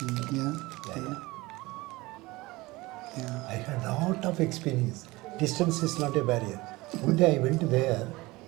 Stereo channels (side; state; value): left; quieter; 21.2 dB